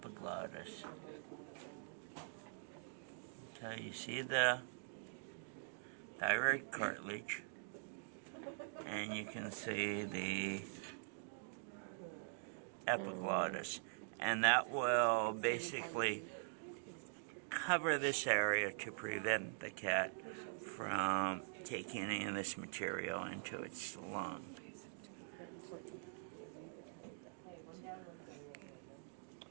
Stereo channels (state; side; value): silent; left; digital silence